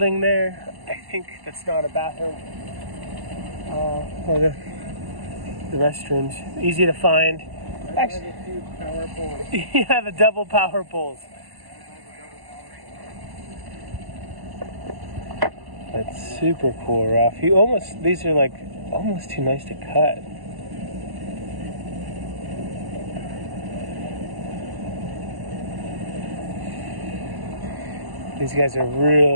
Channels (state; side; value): late; left; 1.1 ms